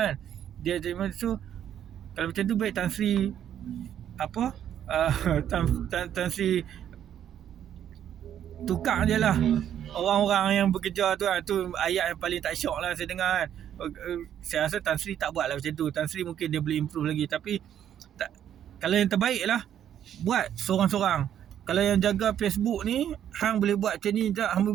kan. Dia jadi so kalau macam tu baik Tan Sri Tan Sri tukar je lah orang-orang yang bekerja tu kan. Tu ayat yang paling tak syok lah saya dengar kan. Saya rasa Tan Sri tak buat lah macam tu. Tan Sri mungkin dia boleh improve lagi. Tapi kalau yang terbaik lah, buat seorang-seorang. Kalau yang jaga Facebook ni, hang boleh buat macam ni tak, hang boleh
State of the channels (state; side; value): quieter; left; 10.1 dB